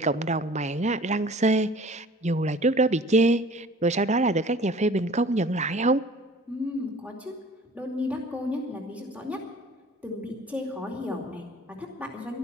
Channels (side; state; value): both; normal; correlation 0.47